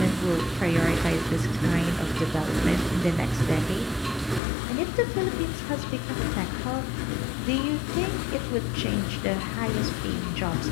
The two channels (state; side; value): drops out; right; at 4.4 s